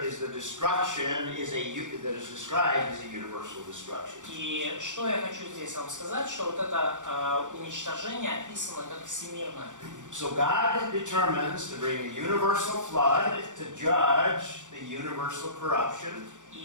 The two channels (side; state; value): left; late; 0.86 ms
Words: is the destruction that is described as a universal destruction. И что я хочу здесь вам сказать, что вот это уничтожение описано как всемирное. So God determines to bring a universal flood to judge the universal corruption.